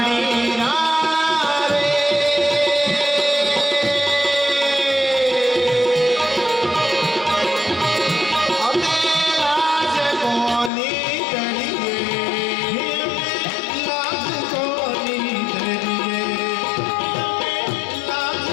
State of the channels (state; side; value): drops out; right; at 10.7 s